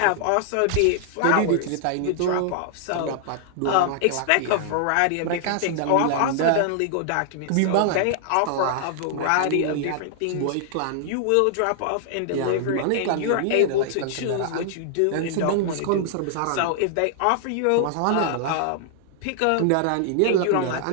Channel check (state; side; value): different; both; correlation -0.01